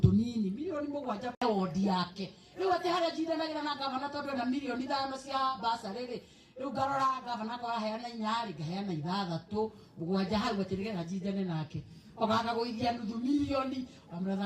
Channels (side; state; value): both; identical; correlation 1.00